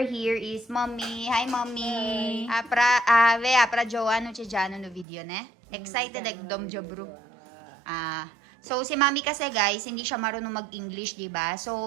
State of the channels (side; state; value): left; drops out; at 5.1 s